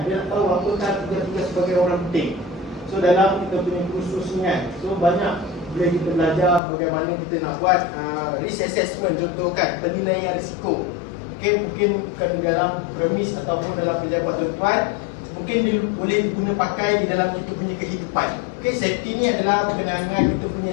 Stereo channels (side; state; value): right; drops out; at 6.6 s